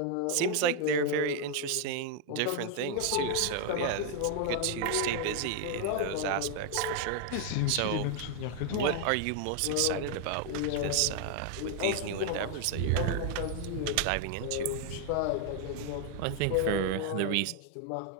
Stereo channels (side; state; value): both; different; correlation 0.00